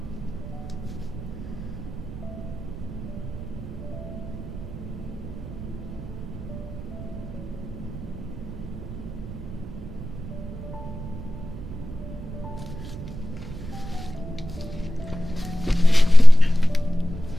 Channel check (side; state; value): right; noise; rumble, 11 dB below the sound